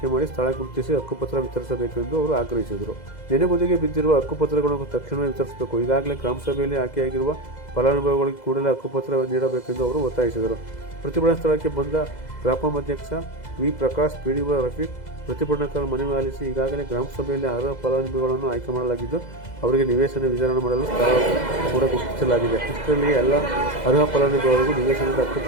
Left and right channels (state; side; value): late; right; 2.0 ms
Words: ಮಾಡಿ ಸ್ಥಳ ಗುರುತಿಸಿ ಹಕ್ಕುಪತ್ರ ವಿತರಿಸಬೇಕು ಎಂದು ಅವರು ಆಗ್ರಹಿಸಿದರು. ನೆನೆಗುದಿಗೆ ಬಿದ್ದಿರುವ ಹಕ್ಕುಪತ್ರಗಳನ್ನು ತಕ್ಷಣವೇ ವಿತರಿಸಬೇಕು. ಈಗಾಗಲೇ ಗ್ರಾಮ ಸಭೆಯಲ್ಲಿ ಆಯ್ಕೆಯಾಗಿರುವ ಫಲಾನುಭವಿಗಳಿಗೆ ಕೂಡಲೇ ಹಕ್ಕುಪತ್ರ ನೀಡಬೇಕೆಂದು ಅವರು ಒತ್ತಾಯಿಸಿದರು. ಪ್ರತಿಭಟನಾ ಸ್ಥಳಕ್ಕೆ ಬಂದ ಗ್ರಾಪಂ ಅಧ್ಯಕ್ಷ ವಿ. ಪ್ರಕಾಶ್, ಪಿಡಿಒ ರಫೀಕ್ ಪ್ರತಿಭಟನಾಕಾರರ ಮನವಿ ಆಲಿಸಿ ಈಗಾಗಲೇ ಗ್ರಾಮ ಸಭೆಯಲ್ಲಿ ಅರ್ಹ ಫಲಾನುಭವಿಗಳನ್ನು ಆಯ್ಕೆ ಮಾಡಲಾಗಿದ್ದು ಅವರಿಗೆ ನಿವೇಶನ ವಿತರಣೆ ಮಾಡಲು ಸ್ಥಳ ಕೂಡ ಗುರುತಿಸಲಾಗಿದೆ. ಇಷ್ಟರಲ್ಲಿಯೇ ಎಲ್ಲ ಅರ್ಹ ಫಲಾನುಭವಿಗಳಿಗೂ ನಿವೇಶನದ